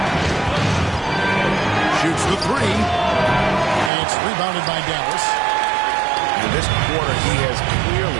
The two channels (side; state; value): left; drops out; at 3.9 s